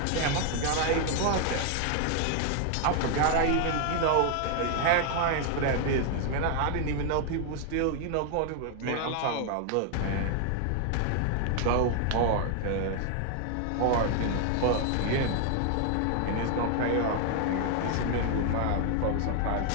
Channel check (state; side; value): different; both; correlation 0.00